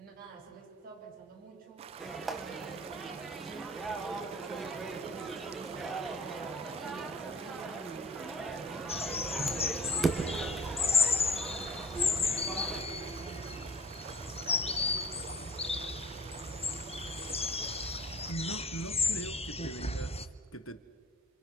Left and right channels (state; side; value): normal; both; correlation 0.45